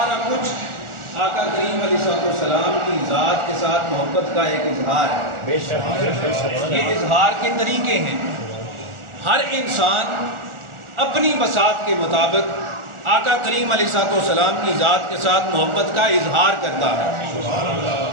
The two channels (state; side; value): late; left; 1.4 ms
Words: کچھ آقا کریم علیہ السلام کی ذات کے ساتھ محبت کا ایک اظہار ہے۔ یہ اظہار کے طریقے ہیں، ہر انسان اپنی بساط کے مطابق آقا کریم علیہ السلام کی ذات کے ساتھ محبت کا اظہار کرتا ہے۔